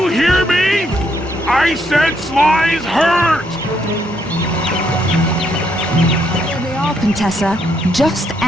hear me? I said Sly's hurt! Here they are, Contessa. Just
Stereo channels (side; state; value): both; normal; correlation 0.74